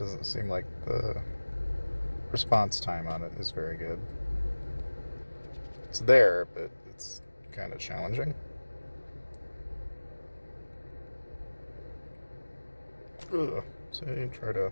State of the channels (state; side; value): inverted; both; correlation -1.00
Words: seem like the response time on it is very good. It's there, but it's kind of challenging. Ugh. So you try to